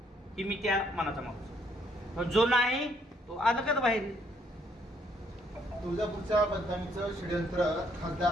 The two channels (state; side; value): normal; both; correlation 0.68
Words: ही मी त्या मनाचा माणूस. जो नाही तो अलगद बाहेर. तुळजापूरच्या बदनामीचं षडयंत्र खासदार